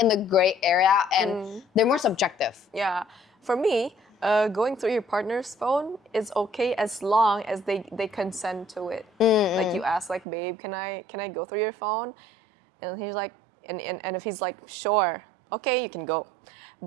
in the gray area, and they're more subjective. Yeah. For me, going through your partner's phone is okay as long as they consent to it. Like you ask, like, babe, can I go through your phone? And he's like, and if he's like, sure, okay, you can go.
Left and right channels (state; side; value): drops out; left; at 10.2 s